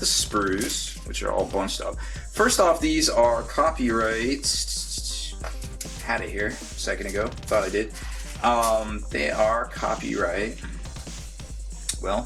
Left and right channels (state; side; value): identical; both; correlation 1.00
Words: sprues, which are all bunched up. First off, these are copyright. Had it here a second ago. Thought I did. They are copyright.